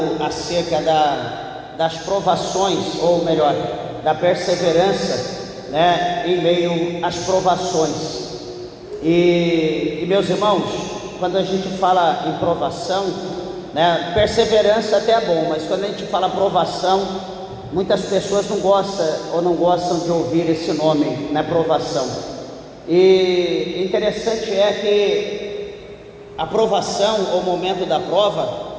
acerca das provações, ou melhor, da perseverança, em meio às provações. E meus irmãos, quando a gente fala em provação, perseverança até é bom, mas quando a gente fala provação, muitas pessoas não gostam de ouvir esse nome, provação. E interessante é que a provação, ou o momento da prova,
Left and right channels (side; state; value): both; identical; correlation 1.00